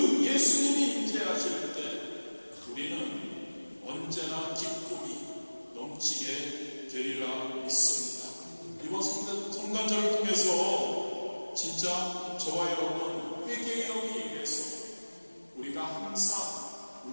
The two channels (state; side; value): inverted; both; correlation -1.00